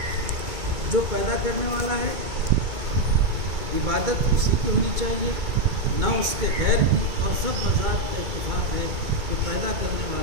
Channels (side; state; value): left; late; 2.2 ms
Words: جو پیدا کرنے والا ہے عبادت اسی کی ہونی چاہیے، نہ اس کے غیر کی، اور سب مذاہب کا اتفاق ہے کہ پیدا کرنے